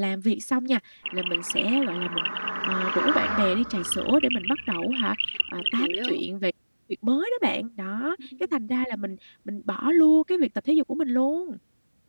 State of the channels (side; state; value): both; inverted; correlation -1.00